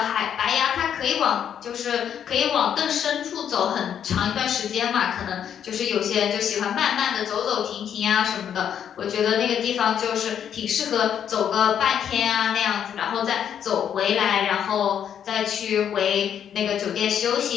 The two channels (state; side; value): quieter; right; 8.9 dB